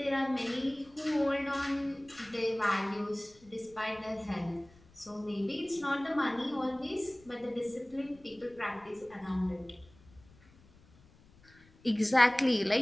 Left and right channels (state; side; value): noise; left; rumble, 27 dB below the sound